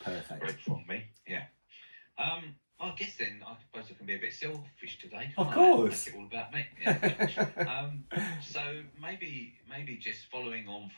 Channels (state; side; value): inverted; both; correlation -1.00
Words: Perfect. Great from me. Yeah. I guess then I suppose I can be a bit selfish today, Of can't I? course. Make it all about me. Yeah. So maybe just following on